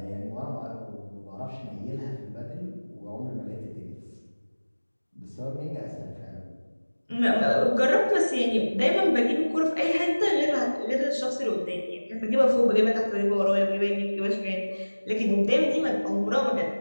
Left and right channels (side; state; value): both; inverted; correlation -1.00